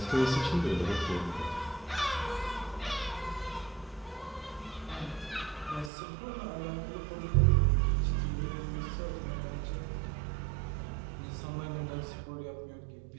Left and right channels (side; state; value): left; drops out; at 5.9 s